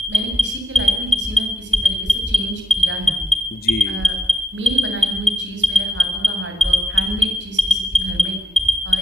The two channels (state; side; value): normal; both; correlation 0.80